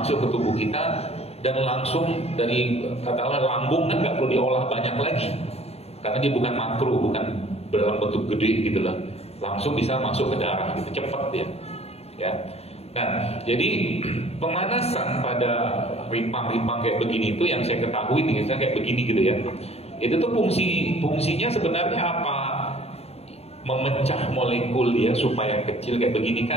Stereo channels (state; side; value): late; right; 0.30 ms